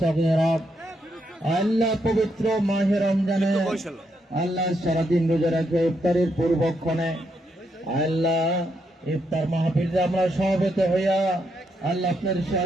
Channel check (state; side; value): normal; both; correlation 0.79